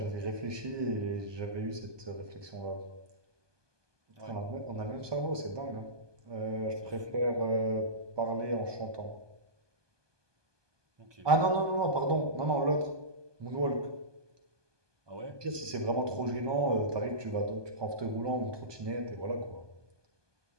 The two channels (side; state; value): left; late; 1.2 ms